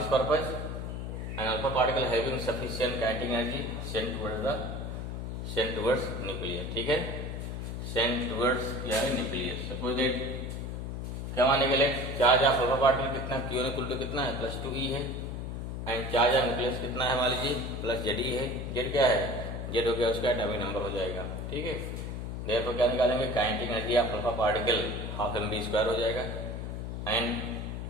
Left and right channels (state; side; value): noise; left; hum, 5 dB below the sound